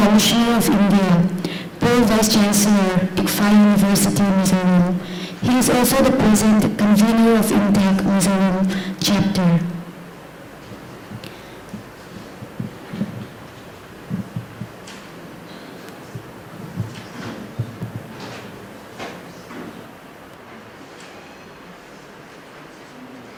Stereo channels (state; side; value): identical; both; correlation 1.00